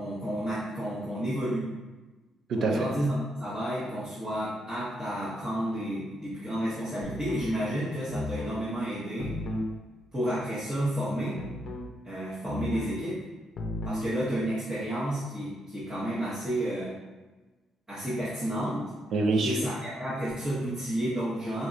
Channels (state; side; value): normal; both; correlation 0.79